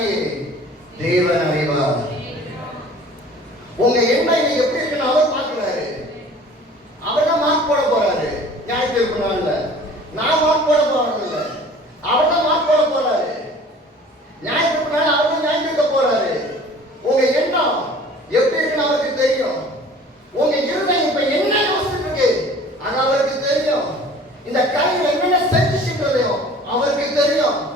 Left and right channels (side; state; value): both; normal; correlation 0.47